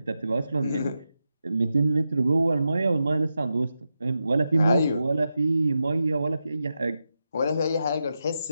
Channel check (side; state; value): both; inverted; correlation -0.89